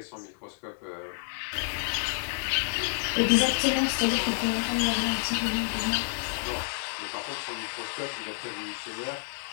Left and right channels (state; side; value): silent; right; 58 dB below the other